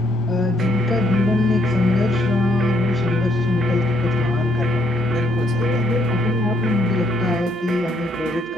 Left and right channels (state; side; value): normal; both; correlation 0.70